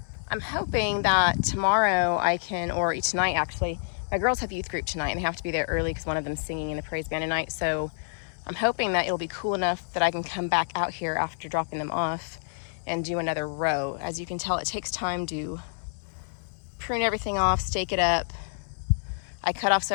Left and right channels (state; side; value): silent; right; 59 dB below the other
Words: I'm hoping that tomorrow I can, or tonight actually, my girls have youth group tonight and they have to be there early because one of them's singing in the praise band tonight. So I'm hoping that it'll be cool enough that I can come back out here after dropping them off and do another row. As you can tell, it takes time to prune everything off, stake it up. I cut off